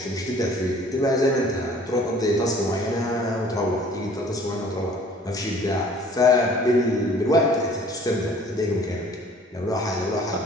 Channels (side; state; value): both; normal; correlation 0.52